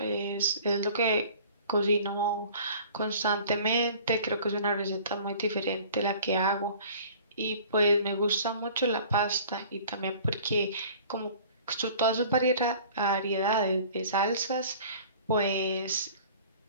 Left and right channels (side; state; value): both; inverted; correlation -0.47